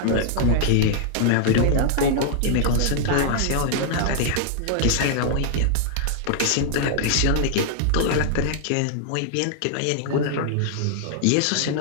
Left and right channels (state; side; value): different; both; correlation -0.01